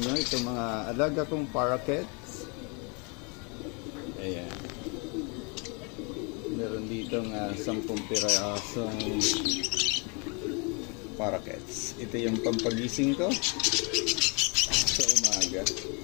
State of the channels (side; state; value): right; quieter; 33.2 dB